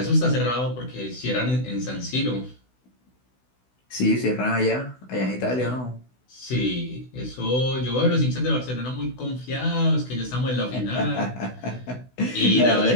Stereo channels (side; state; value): right; late; 16 ms